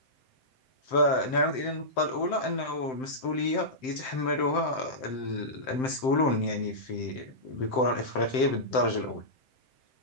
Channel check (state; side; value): late; right; 7.7 ms